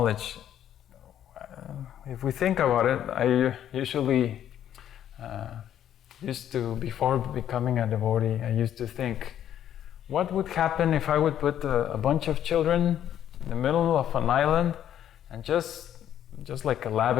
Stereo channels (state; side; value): quieter; right; 10.6 dB